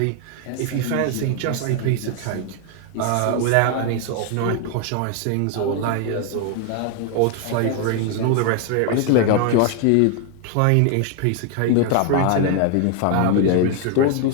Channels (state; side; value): different; both; correlation 0.00